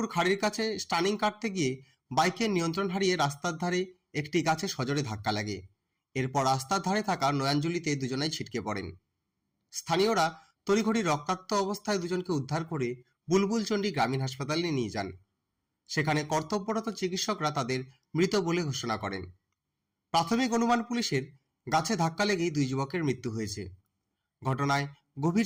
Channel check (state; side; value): identical; both; correlation 1.00